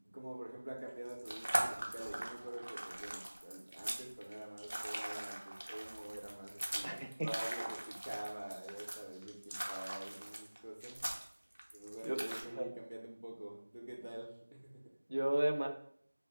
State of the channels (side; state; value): both; inverted; correlation -1.00